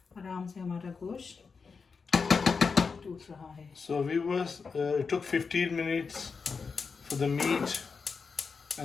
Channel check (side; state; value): right; quieter; 5.1 dB